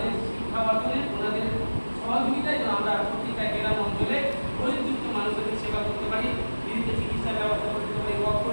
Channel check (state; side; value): inverted; both; correlation -1.00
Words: শিক্ষা অর্জনে, ওনাদের সহযোগিতায় যেন আমরা প্রত্যেকটা গ্রাম অঞ্চলে গরিবদুঃখী মানুষদের সেবা করতে পারি, ফ্রিতে চিকিৎসার ব্যবস্থা করে দিতে পারি,